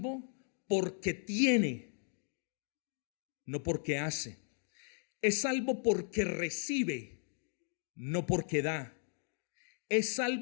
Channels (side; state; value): right; silent; 53 dB below the other